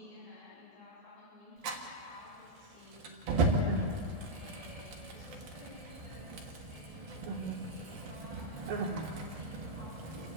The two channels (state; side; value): late; left; 1.7 ms